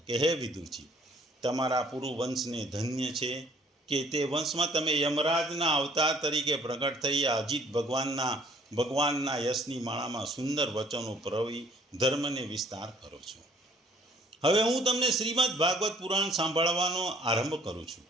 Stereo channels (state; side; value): normal; both; correlation 0.58